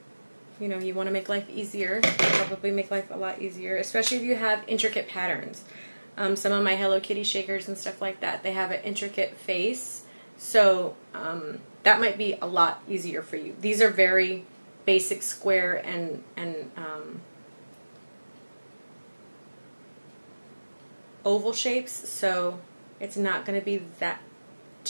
you want to make life easier. Probably make life a lot easier, especially if you have intricate patterns. Some of my Hello Kitty shakers and stuff like that, they have an intricate face, so that might be a lot easier for you. These are very basic square and oval shapes, so it's not going to be that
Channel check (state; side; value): inverted; both; correlation -1.00